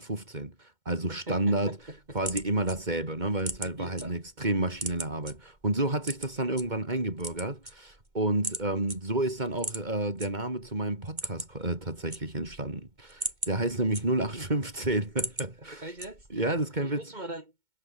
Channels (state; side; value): late; left; 2.2 ms